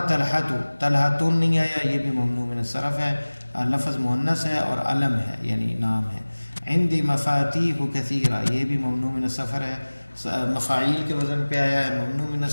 طلحۃ، طلحۃ نہیں آیا، یہ بھی ممنوع من الصرف ہے. لفظ مؤنث ہے اور علم ہے یعنی نام ہے. عندي مفاتیح کثیرہ، یہ بھی ممنوع من الصرف ہے. مفاعیل کے وزن پہ آیا ہے، ممنوع من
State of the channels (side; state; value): both; inverted; correlation -1.00